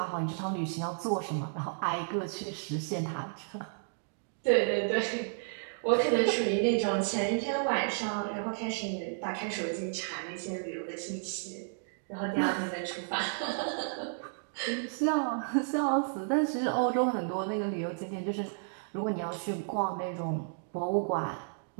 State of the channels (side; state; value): left; silent; digital silence